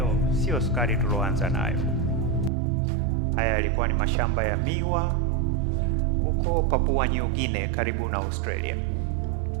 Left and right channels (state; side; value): drops out; left; at 2.5 s